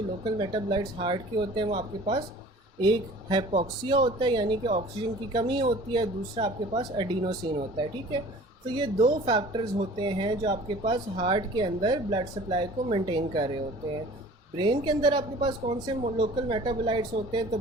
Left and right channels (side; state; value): both; normal; correlation 0.46